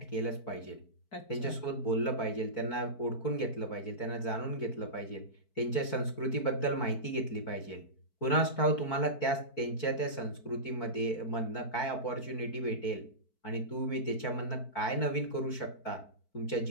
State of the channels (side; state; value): right; late; 4.6 ms